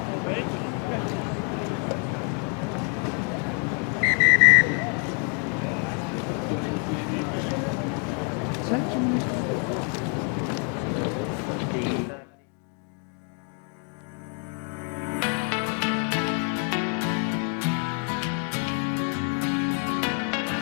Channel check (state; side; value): quieter; right; 39.6 dB